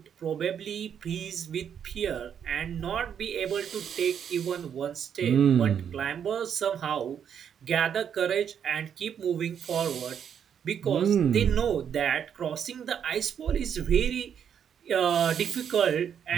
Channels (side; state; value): left; quieter; 8.2 dB